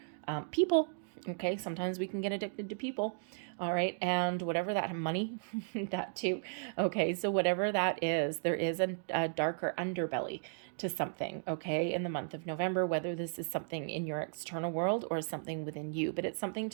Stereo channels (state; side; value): silent; left; digital silence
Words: people, Okay, sometimes we can get addicted to people. All right, and whatever that money, that too. Okay, so whatever that is, there is a darker underbelly to something, okay, in the month of November, whether this is something in your external world or something within you, but it's something